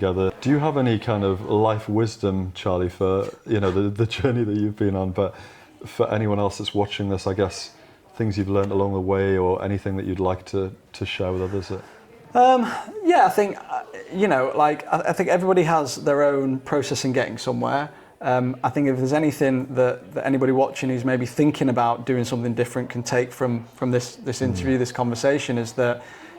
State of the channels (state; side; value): identical; both; correlation 1.00